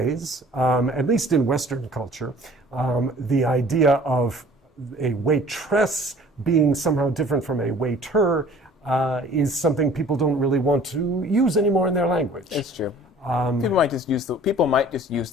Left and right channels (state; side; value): normal; both; correlation 0.50